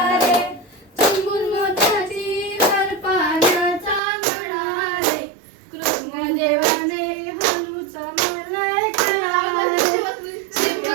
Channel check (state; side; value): drops out; left; at 4.0 s